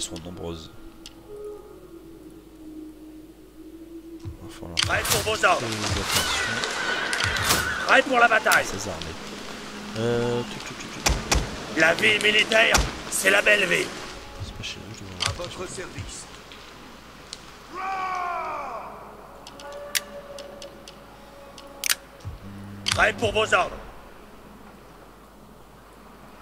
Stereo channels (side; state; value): both; identical; correlation 1.00